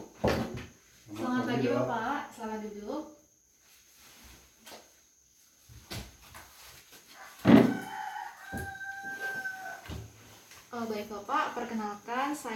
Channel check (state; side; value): identical; both; correlation 1.00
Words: Selamat pagi Bapak, selamat duduk. Baik Bapak, perkenalkan